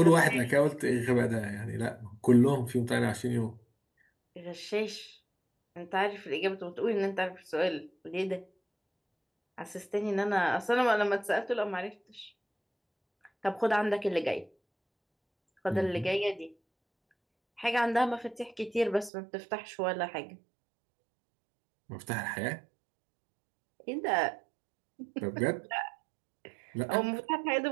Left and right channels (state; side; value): drops out; left; at 19.1 s